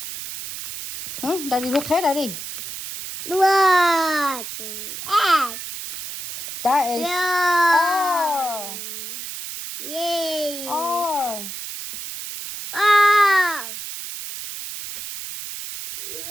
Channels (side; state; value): right; noise; hiss, 8 dB below the sound